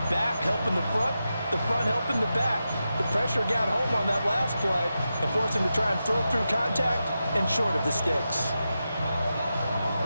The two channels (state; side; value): inverted; both; correlation -0.90